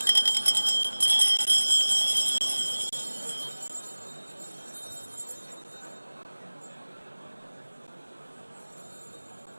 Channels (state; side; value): inverted; both; correlation -1.00